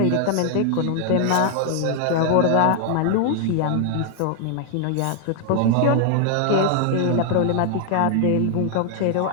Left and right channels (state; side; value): different; both; correlation 0.00